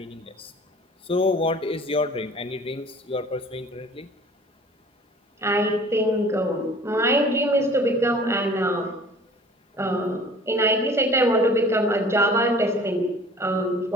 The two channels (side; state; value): both; normal; correlation 0.48